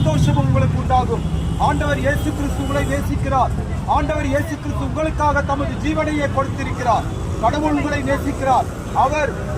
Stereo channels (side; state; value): both; identical; correlation 1.00